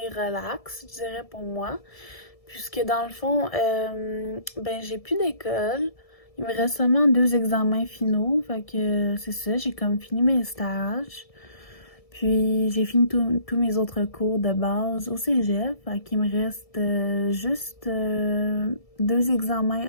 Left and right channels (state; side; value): late; right; 1.7 ms